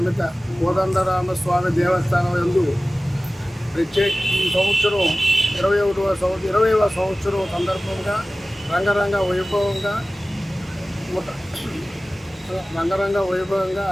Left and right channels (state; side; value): normal; both; correlation 0.97